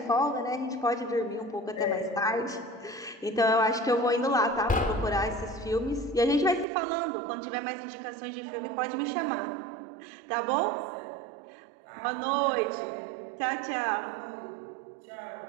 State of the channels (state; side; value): drops out; left; at 6.7 s